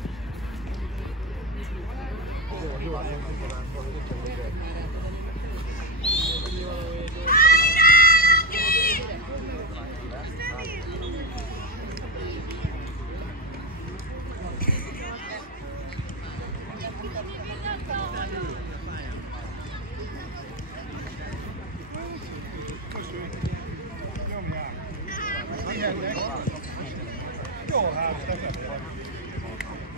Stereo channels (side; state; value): both; normal; correlation 0.15